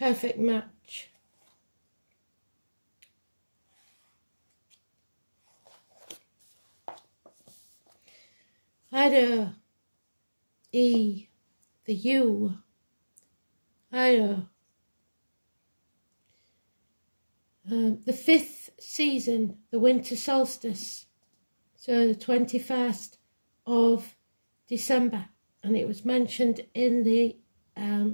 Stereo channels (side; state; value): both; inverted; correlation -1.00